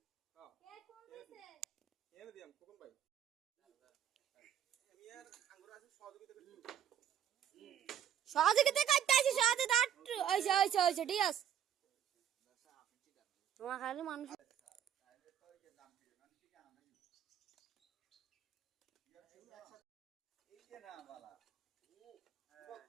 হ্যাঁ কে কোন দিছে এনে দিয়াম কোন ভাই আমি আর আঙ্গুর আছে সহযোগিতা করছি সহযোগিতা করতে আছি সহযোগিতা ওইছে ঠিক আছে তোমার খালি মানুষ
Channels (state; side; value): quieter; left; 9.6 dB